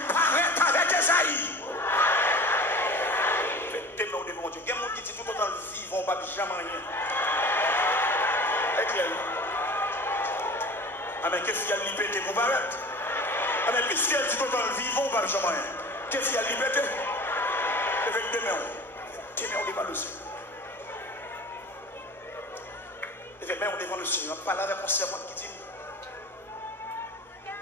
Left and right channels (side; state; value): both; normal; correlation 0.39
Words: paraître avec Esaïe. Faites au devant Dieu. Il y a des gens qui disent tout autant vivre, on ne va jamais rien. Est clair? Amen. Qu'est-ce qu'il y a de liberté pour paraître? Amen. Qu'est-ce qu'il y a de tout autant vivre, on ne va jamais rien. Qu'est-ce qu'il y a de liberté? Effectivement. On devant le Seigneur. Effectivement, on devant le Seigneur. On parle avec mon servante qui dit